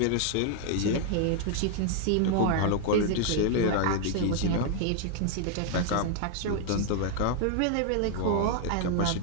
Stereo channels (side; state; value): both; different; correlation 0.00